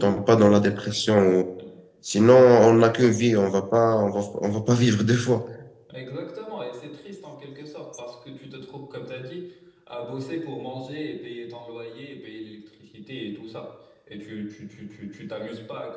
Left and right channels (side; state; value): both; identical; correlation 1.00